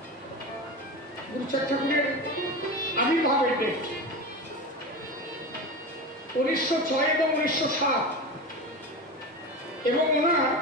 গুরুচাঁদ ঠাকুরের আবির্ভাবের ডেট। 1906 এবং 1907 এবং ওনার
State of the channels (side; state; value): both; normal; correlation 0.25